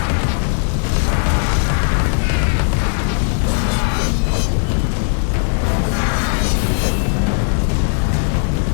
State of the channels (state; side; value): silent; right; 68 dB below the other